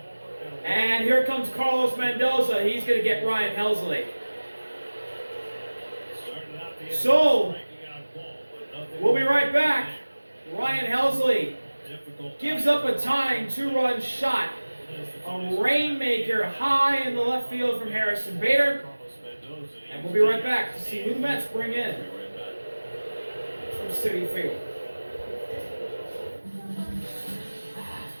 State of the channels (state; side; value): inverted; both; correlation -1.00